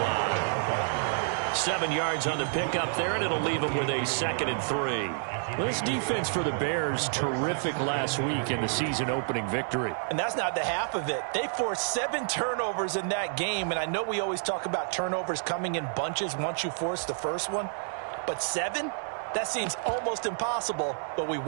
7 yards on the pickup there, and it'll leave them with a 2nd and 3. Well, this defense for the Bears, terrific last week in the season-opening victory. And that's not the half of it. They forced 7 turnovers in that game, and I know we always talk about turnovers coming in bunches once you force the first one. But 7? That seems almost impossible, but we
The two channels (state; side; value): silent; left; digital silence